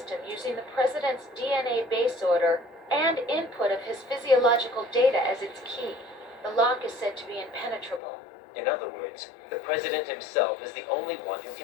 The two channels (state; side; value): drops out; right; at 8.0 s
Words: using the President's DNA base order and input of his physiological data as its key. The lock is said to be impenetrable. In other words, the President himself is the only one who